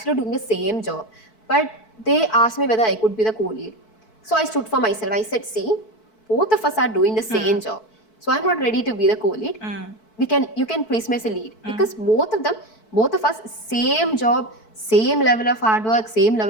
doing the same job. But they asked me whether I could be the co-lead. So I stood for myself. I said, see, both of us are doing the same job. So I'm not ready to be the co-lead. You can place me as a lead. Because both of us, same job, same level of hard work, same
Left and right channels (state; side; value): late; right; 4.6 ms